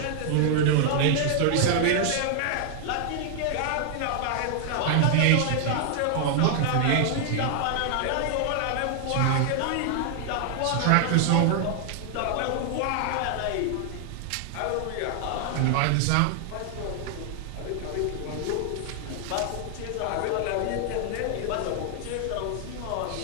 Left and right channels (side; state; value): both; different; correlation 0.00